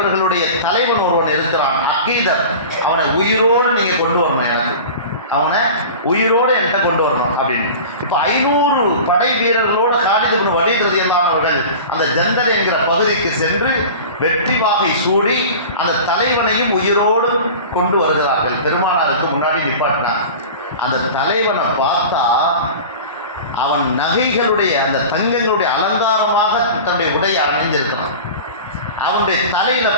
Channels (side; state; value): both; inverted; correlation -0.35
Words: தலைவன் ஒருவன் இருக்கிறான், அகீதர், அவனை உயிரோடு நீங்கள் கொண்டு வரணும், எனக்கு அவனை உயிரோடு என்கிட்ட கொண்டு வரணும் அப்படின்னு. இப்போ 500 படை வீரர்களோடு காலித் இப்னு வலீத் ரலியல்லாஹு அவர்கள் அந்த ஜந்தல் என்கிற பகுதிக்கு சென்று வெற்றி வாகை சூடி அந்த தலைவனையும் உயிரோடு கொண்டு வருகிறார்கள். பெருமானாருக்கு முன்னாடி நிப்பாட்டினார். அந்த தலைவனை பார்த்தா அவன் நகைகளுடைய அந்த தங்கங்களுடைய அலங்காரமாக தன்னுடைய உடையை அணிந்திருக்கிறான். அவனுடைய தலையில